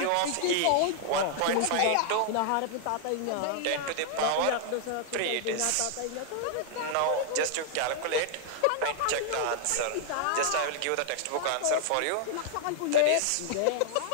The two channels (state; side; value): different; both; correlation -0.01